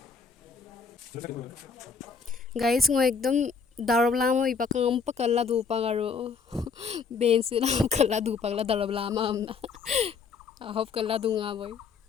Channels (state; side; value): quieter; right; 5.5 dB